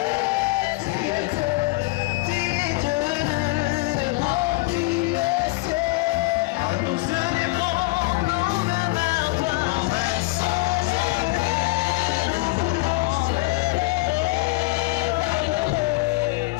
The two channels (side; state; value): right; quieter; 23.3 dB